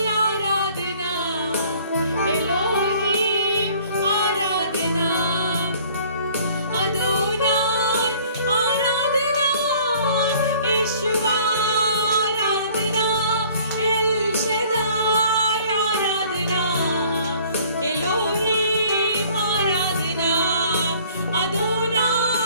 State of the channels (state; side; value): inverted; both; correlation -0.54